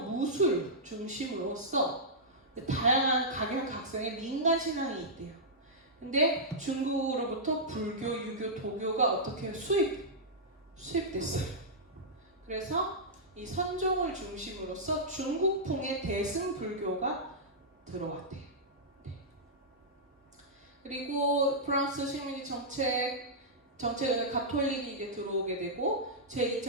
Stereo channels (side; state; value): both; normal; correlation -0.12